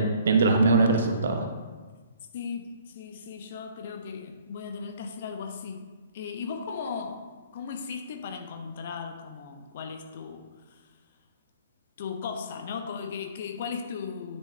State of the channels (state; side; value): inverted; both; correlation -0.57